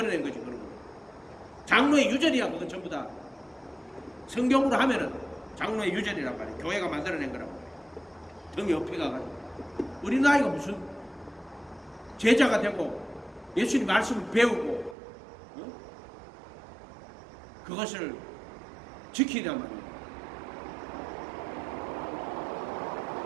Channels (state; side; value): drops out; left; at 15.0 s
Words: 거지 그런 거. 장로의 유전이야. 그건 전부 다 성경으로 하면은 장로의 유전이란 말이야. 교회가 만들어낸 거란 말이야. 등에 옆에 가가지고 우리 나이가 무슨 제자가 되고 예수님 말씀을 배우고 그것을 지키란 말이에요.